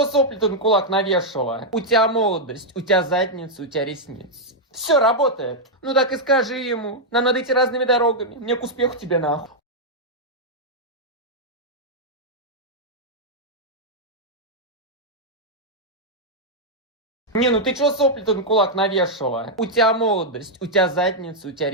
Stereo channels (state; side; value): normal; both; correlation -0.03